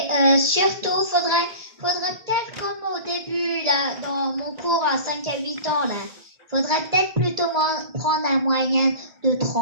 surtout, faudrait peut-être comme au début, là, dans mon cours à 5 à 8 ans, là, faudrait peut-être plutôt prendre un moyen de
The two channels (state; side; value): late; left; 1.7 ms